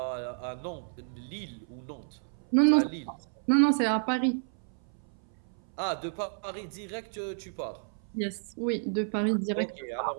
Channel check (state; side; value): silent; left; 57 dB below the other